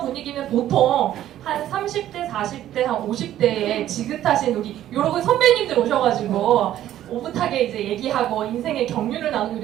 분위기는 보통 한 30대, 40대, 한 50대에 지긋하신 우리 여러 선배님들 오셔가지고 오붓하게 이제 얘기하고 인생의 경륜을 나누고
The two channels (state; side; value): quieter; left; 12.4 dB